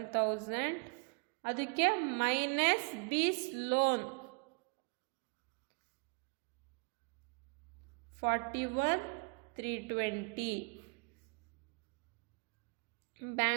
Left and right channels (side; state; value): left; quieter; 33.6 dB